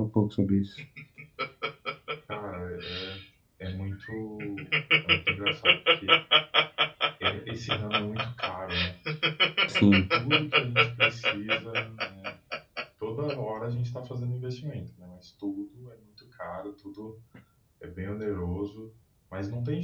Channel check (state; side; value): identical; both; correlation 1.00